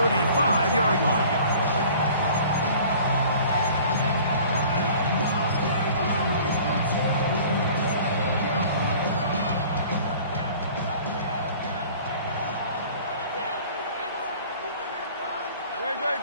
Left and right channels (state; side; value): inverted; both; correlation -0.47